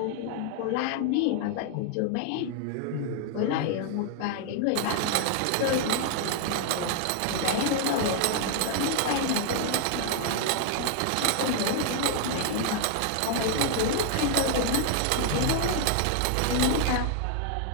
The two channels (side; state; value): both; different; correlation 0.00